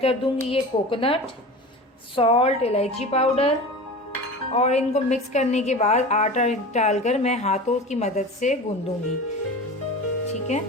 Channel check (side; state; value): both; normal; correlation 0.33